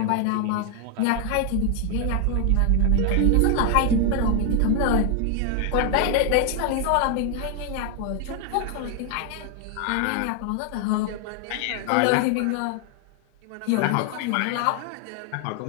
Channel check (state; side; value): different; both; correlation 0.00